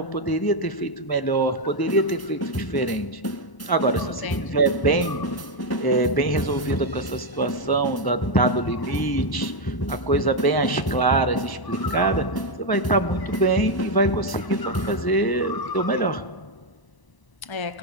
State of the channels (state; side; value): late; right; 1.0 ms